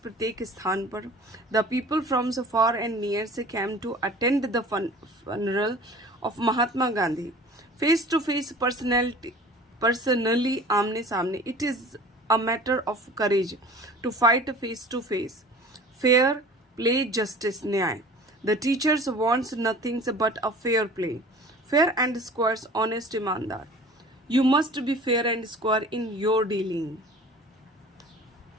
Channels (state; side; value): normal; both; correlation 0.43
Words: स्थान पर. The people from the far and near came to attend the funeral of Mahatma Gandhi. Face to face, personally आमने सामने. It is a matter of courage to fight face to face. Fair play, justice, न्याय. The teachers wants nothing but a fair play. Fair and square, honest, ईमानदार. You must be fair and square in your dealing.